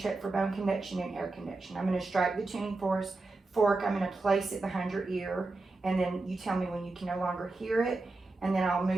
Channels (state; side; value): quieter; left; 3.3 dB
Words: check for bone conduction and air conduction. I'm going to strike the tuning fork. I'm going to place it behind your ear, and then you tell me when you can no longer hear it, and then I'll